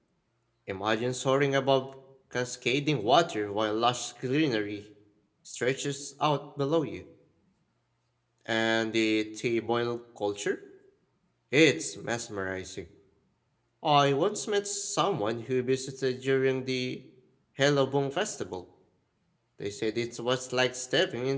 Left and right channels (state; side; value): identical; both; correlation 1.00